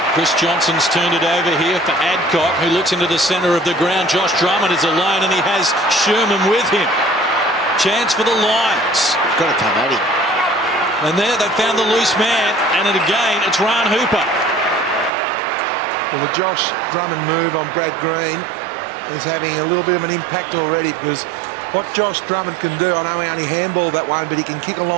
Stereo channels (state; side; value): drops out; left; at 15.1 s